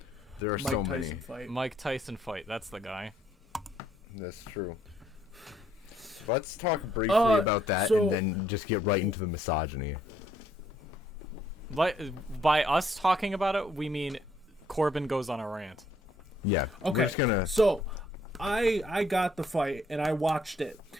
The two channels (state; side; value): normal; both; correlation 0.68